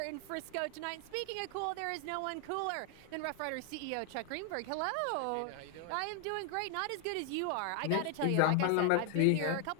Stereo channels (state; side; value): different; both; correlation 0.00